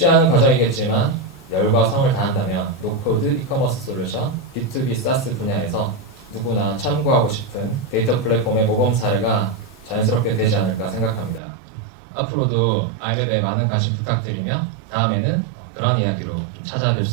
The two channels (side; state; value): left; drops out; at 11.4 s